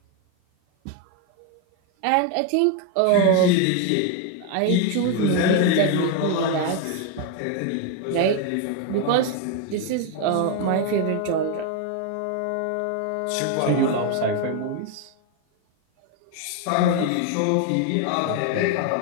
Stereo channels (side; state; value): both; different; correlation 0.01